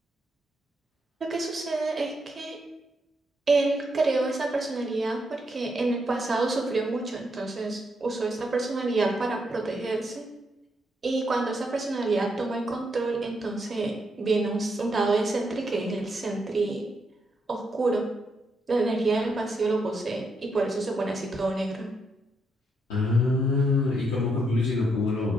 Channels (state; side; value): normal; both; correlation 0.78